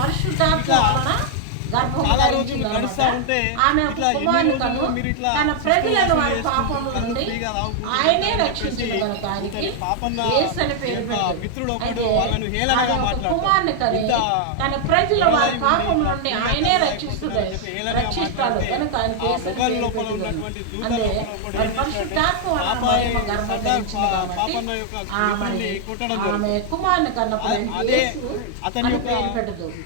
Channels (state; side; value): different; both; correlation 0.00